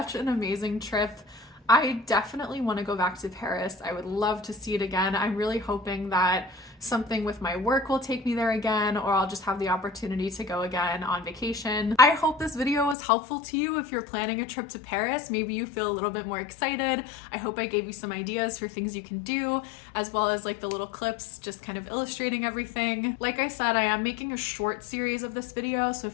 an amazing trip. I definitely want to go back to Paris. I would love to see it again. I'm really hoping that something with my work will take me there again, or I'll just have the opportunity to go again on vacation. I hope this video was helpful to you if you're planning a trip to Paris. Maybe you feel a little bit more excited. I hope I gave you some ideas for things you can do, as well as like the little clips just kind of illustrating everything. Like I said, I am making a short series of this video, so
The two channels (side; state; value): right; drops out; at 13.0 s